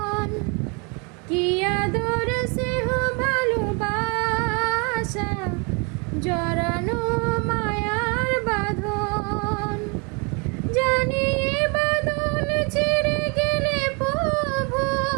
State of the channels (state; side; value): quieter; left; 32.4 dB